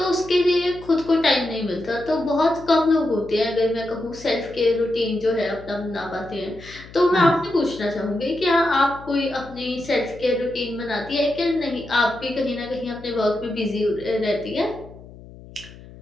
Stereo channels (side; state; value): left; noise; hum, 19 dB below the sound